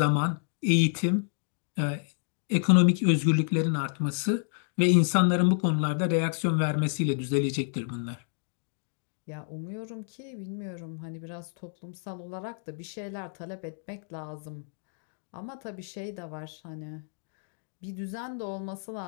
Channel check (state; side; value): silent; right; digital silence